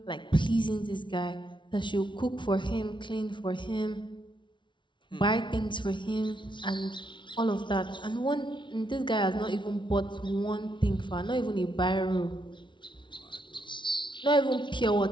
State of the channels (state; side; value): late; right; 0.24 ms